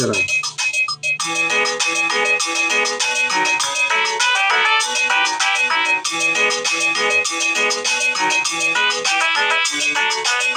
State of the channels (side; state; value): both; identical; correlation 1.00